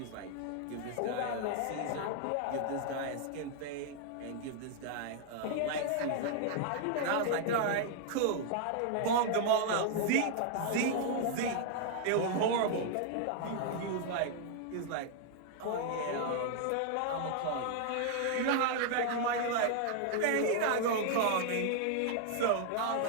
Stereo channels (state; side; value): different; both; correlation -0.01